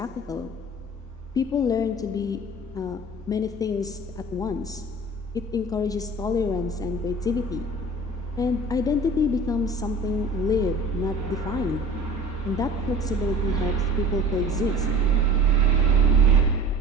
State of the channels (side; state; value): both; normal; correlation 0.41